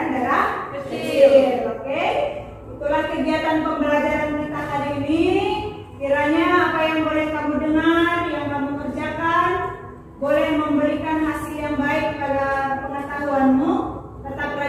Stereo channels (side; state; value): both; identical; correlation 1.00